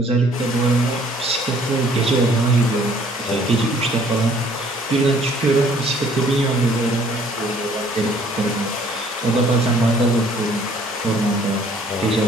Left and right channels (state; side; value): normal; both; correlation 0.58